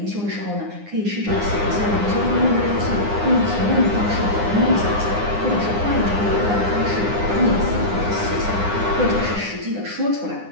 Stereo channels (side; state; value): left; late; 9.8 ms